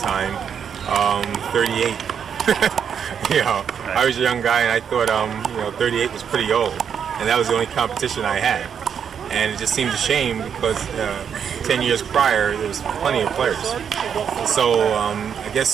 38. I was a young guy, and I thought, 38 was pretty old, and that was the only competition I had. And it just seemed a shame because 10 years prior, there was plenty of players. So I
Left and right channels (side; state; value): left; quieter; 7.7 dB